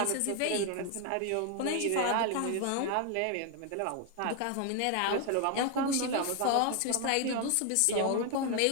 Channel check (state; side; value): different; both; correlation 0.01